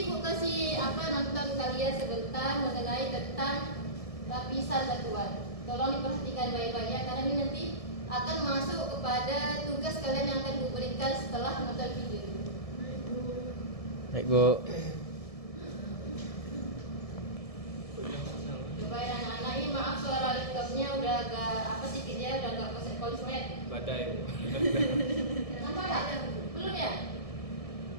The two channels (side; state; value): right; late; 1.7 ms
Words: Ibu kasih nonton kalian sebentar mengenai tentang lapisan batuan. Tolong diperhatikan baik-baik ya, karena ini nanti akan masuk kepada tugas kalian yang akan diberikan setelah menonton video. Baik Bu. Coba ya anak-anak ini, maaf suara laptopnya udah agak sedikit ya, udah agak konslet. Badai Bu. Nampak nggak? Belum ya?